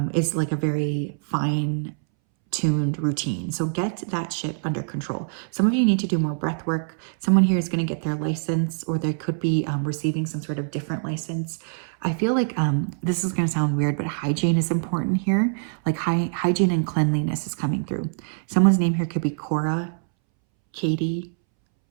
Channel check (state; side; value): silent; left; 62 dB below the other